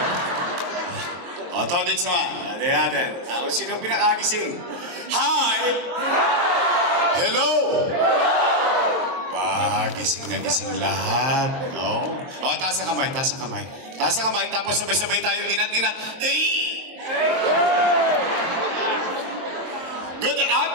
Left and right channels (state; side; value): late; left; 23 ms